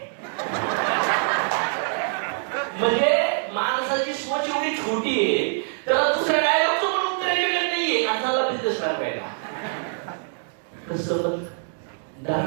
म्हणजे माणसाची सोच एवढी छोटी आहे तर दुसऱ्या डायलॉगचं पण उत्तर एवढं नाहीये. माणसाला बिझनेस करायला कसं पण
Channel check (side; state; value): left; silent; 60 dB below the other